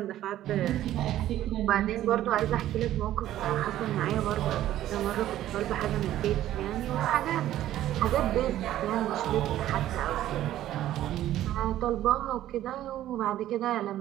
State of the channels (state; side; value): quieter; left; 13.1 dB